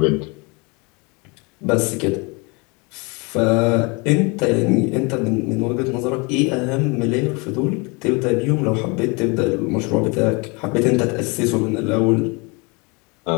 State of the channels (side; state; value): right; quieter; 29.3 dB